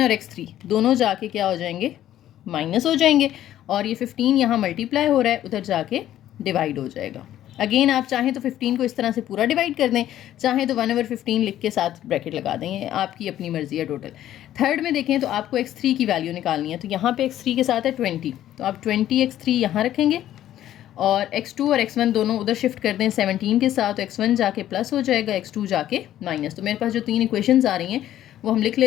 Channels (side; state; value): right; quieter; 12.4 dB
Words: और x3 दोनों जाके क्या हो जाएंगे, माइनस हो जाएंगे, और ये 15 यहाँ मल्टीप्लाई हो रहा है उधर जाके डिवाइड हो जाएगा। अगेन आप चाहें तो 15 को इस तरह से पूरा डिवाइड कर दें, चाहें तो 1/15 लिख के साथ ब्रैकेट लगा दें, ये आपकी अपनी मर्जी है टोटल। थर्ड में देखें तो आपको x3 की वैल्यू निकालनी है, तो यहाँ पे x3 के साथ है 20, तो आप 20x3 यहाँ रखेंगे और x2 और x1 दोनों उधर शिफ्ट कर दें 17 के साथ, तो x1 जाके प्लस हो जाएगा, x2 जाके माइनस। तो मेरे पास जो 3 इक्वेशंस आ रही हैं वो हम लिख